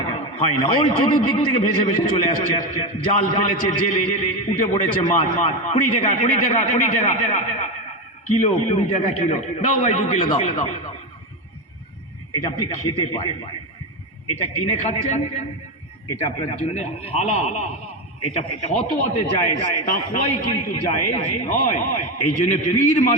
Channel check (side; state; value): both; normal; correlation 0.15